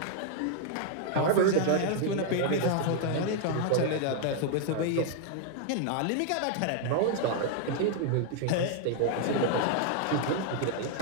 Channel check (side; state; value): both; different; correlation 0.00